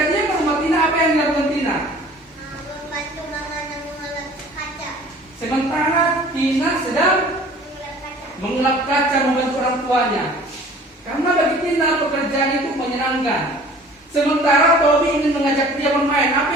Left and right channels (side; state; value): both; normal; correlation 0.48